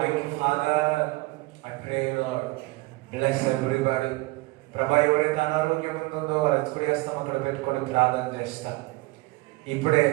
you, Father. I pray, Lord, bless everybody. ప్రభా, ఎవరైతే అనారోగ్యం ఉంటుందో వాళ్ళు ఎత్తుకుడి వేస్తాం అక్కడ పెట్టుకొని ప్రార్థన చేస్తాం. ఇప్పుడే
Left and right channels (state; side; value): quieter; left; 22.4 dB